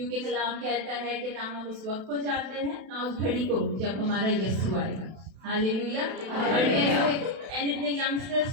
कलाम कहता है कि ना हम उस वक्त को जानते हैं ना उस घड़ी को जब हमारा यीशु आएगा। हालेलुया। और इतने यंगस्टर्स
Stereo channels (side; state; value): left; late; 32 ms